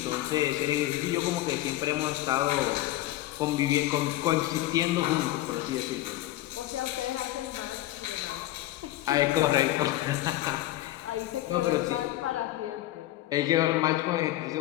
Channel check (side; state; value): right; quieter; 15.7 dB